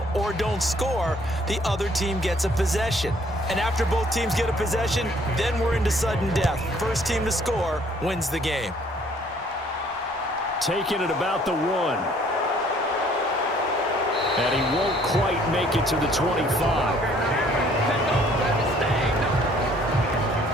or don't score, the other team gets a possession. And after both teams get a possession, then we're into sudden death. First team to score wins the game. Taking it about the 1. And he won't quite make it to the 25.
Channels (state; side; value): normal; both; correlation 0.60